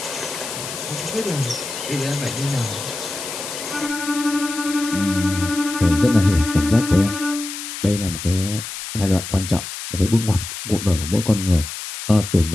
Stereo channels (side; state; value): left; noise; hiss, 8 dB below the sound